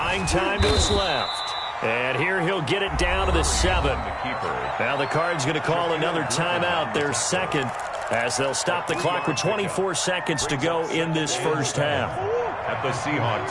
time to his left. And here he'll get it down to the 7. Now the Cards going to call another timeout, their 2nd, as they'll stop the clock with 24 seconds to go in this first half. At the Seahawks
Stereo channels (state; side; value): identical; both; correlation 1.00